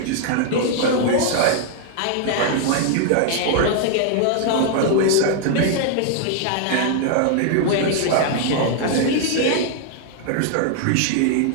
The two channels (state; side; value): different; both; correlation 0.00